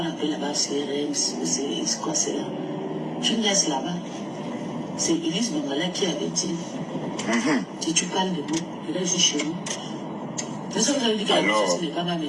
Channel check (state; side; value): identical; both; correlation 1.00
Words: appelle là-bas CRM, c'est quoi c'est là? Tu me laisses là-bas. C'est Elise Bangala qui avait dit, si tu parles de nous, je vais chez nous. C'est ça que vous avez dit que la maison n'est pas ma